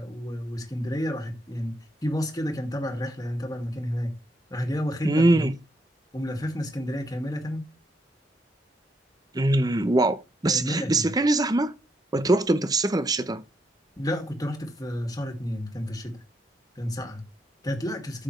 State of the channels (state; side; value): normal; both; correlation 0.78